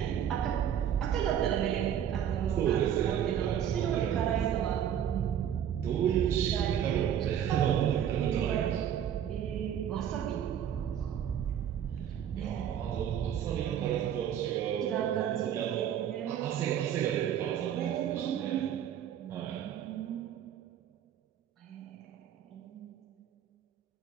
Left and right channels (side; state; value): left; quieter; 9.6 dB